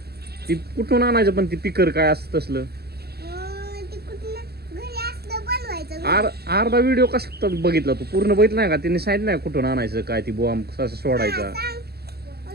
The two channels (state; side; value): late; left; 0.46 ms